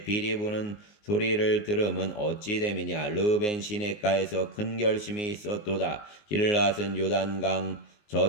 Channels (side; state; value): right; late; 19 ms